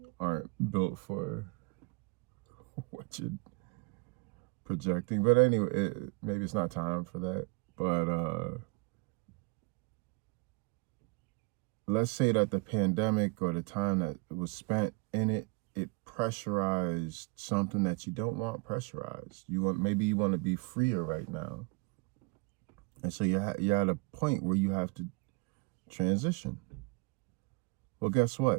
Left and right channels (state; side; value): quieter; left; 29.4 dB